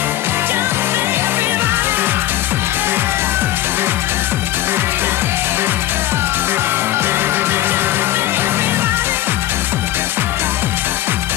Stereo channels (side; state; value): right; quieter; 14.1 dB